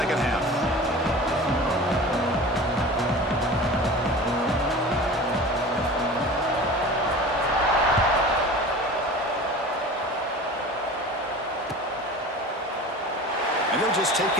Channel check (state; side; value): normal; both; correlation 0.37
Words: half. And they'll just take